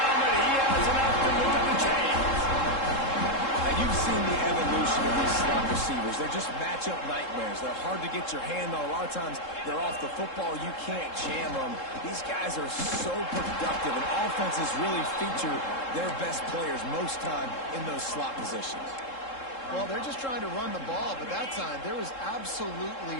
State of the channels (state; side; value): late; right; 3.7 ms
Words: but he has enough to move the chains. Now, you've seen the evolution of these slot receivers. They're just matchup nightmares. They're hard to get your hand on. A lot of times, they're off the football. You can't jam them. These guys are so productive, and offenses really feature their best players most time in those slot positions. Well, they're just trying to run the ball, but that time there was